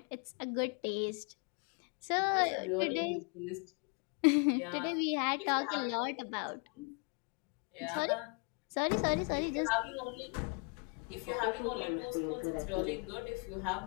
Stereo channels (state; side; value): quieter; right; 35.5 dB